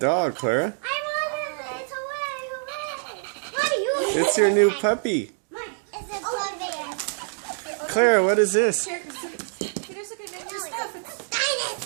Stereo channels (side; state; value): left; silent; digital silence